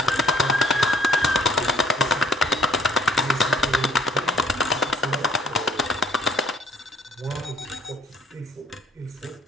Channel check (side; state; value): both; normal; correlation 0.58